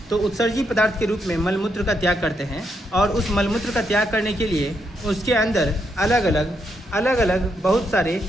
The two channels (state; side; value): normal; both; correlation 0.79